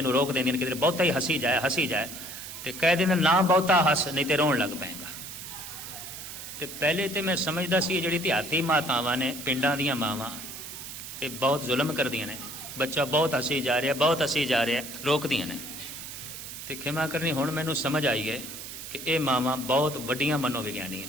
नूं रोक देंदियां कि बहुता ही हसी जाए तो कह देंदे ना बहुता हस नहीं तो रोन लग पेगा। तो पहले तो मैं समझदा सी जिहड़ी देहाती मातावां ने, पिंडां दीयां मावां, ये बहुत जुल्म करदियां ने। बच्चा बहुत हसी जा रहा, बहुत हसी जा रहा, रोकदियां ने। तो खिमा करनी हुण मैनूं समझ आई है कि ये मावां बहुत वड्डियां मनोविग्यानी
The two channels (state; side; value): noise; right; hiss, 10 dB below the sound